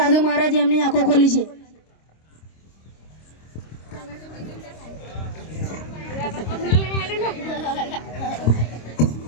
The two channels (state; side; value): late; right; 26 ms